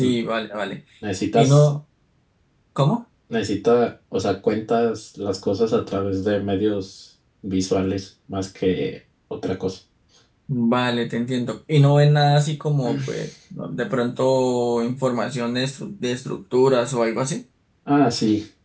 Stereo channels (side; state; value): both; identical; correlation 1.00